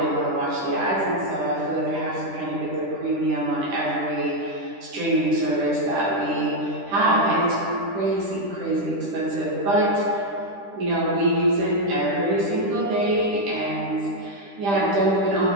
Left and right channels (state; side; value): late; left; 10 ms